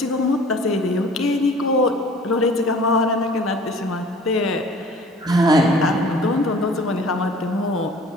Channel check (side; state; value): both; normal; correlation 0.49